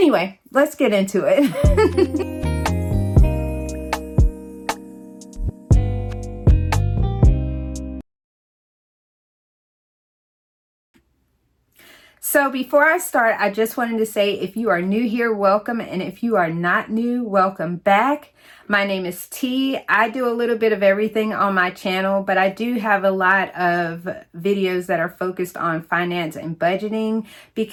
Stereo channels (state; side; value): identical; both; correlation 1.00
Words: let's get into it. So before I start, I just wanted to say if you are new here, welcome. And if you are not new, welcome back. My name is T. I do a little bit of everything on my channel, but I do have a lot of videos that are focused on finance and budgeting